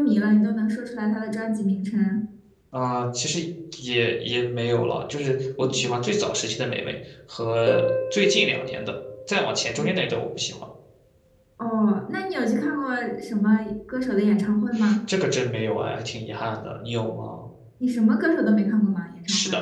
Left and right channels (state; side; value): identical; both; correlation 1.00